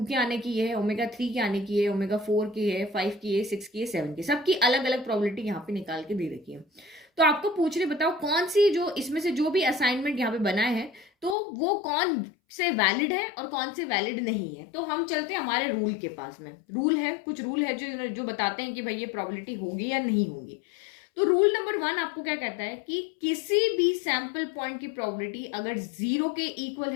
के आने की ये है, ओमेगा 3 के आने की है, ओमेगा 4 की है, 5 की है, 6 की है, 7 की, सबकी अलग अलग प्रोबेबिलिटी यहाँ पे निकाल के दे रखी है। तो आपको पूछ रहे बताओ कौन सी जो इसमें से जो भी असाइनमेंट यहाँ पे बनाए हैं तो वो कौन से वैलिड है और कौन से वैलिड नहीं है। तो हम चलते हैं हमारे रूल के पास में। रूल है, कुछ रूल है जो बताते हैं कि भाई ये प्रोबेबिलिटी होगी या नहीं होगी। तो रूल नंबर 1 आपको क्या कहता है कि किसी भी सैंपल पॉइंट की प्रोबेबिलिटी अगर 0 के इक्वल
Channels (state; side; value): drops out; right; at 11.4 s